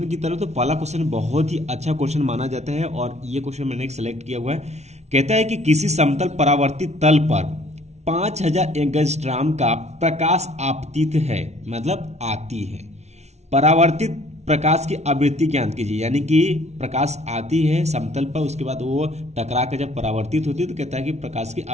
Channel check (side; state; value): left; late; 0.32 ms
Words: की तरफ। तो पहला क्वेश्चन बहुत ही अच्छा क्वेश्चन माना जाता है और ये क्वेश्चन मैंने सेलेक्ट किया हुआ है। कहता है कि किसी समतल परावर्तित तल पर 5000 एंगस्ट्रॉम का प्रकाश आपतित है, मतलब आती है। परावर्तित प्रकाश की आवृत्ति ज्ञात कीजिए, यानी कि प्रकाश आती है समतल पर, उसके बाद वो टकरा कर जब परावर्तित होती है तो कहता है कि प्रकाश की